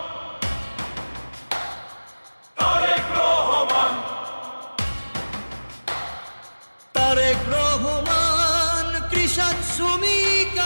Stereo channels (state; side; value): inverted; both; correlation -1.00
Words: তারেক রহমান কৃষক শ্রমিক